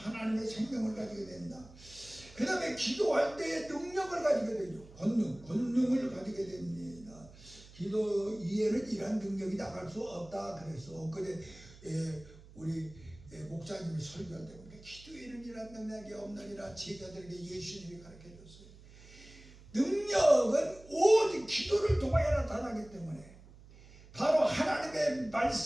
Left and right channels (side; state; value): right; noise; hum, 21 dB below the sound